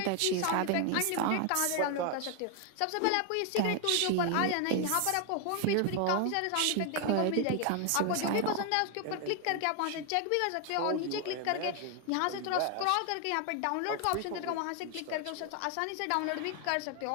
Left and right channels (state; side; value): different; both; correlation 0.00